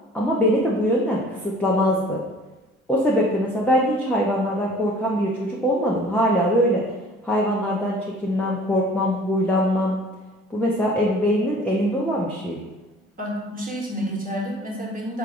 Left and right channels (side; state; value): both; normal; correlation 0.49